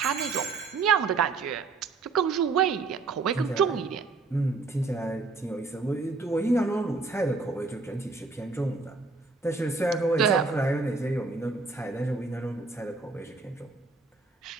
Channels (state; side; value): quieter; left; 4.1 dB